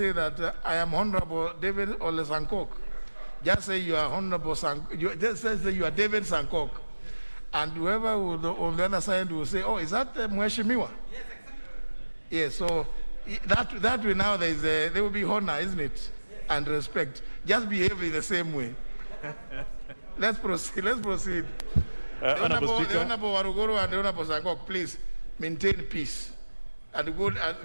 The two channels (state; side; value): inverted; both; correlation -1.00